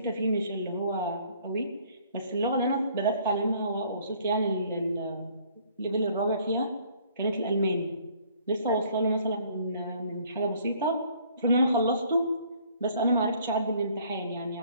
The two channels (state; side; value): inverted; both; correlation -0.59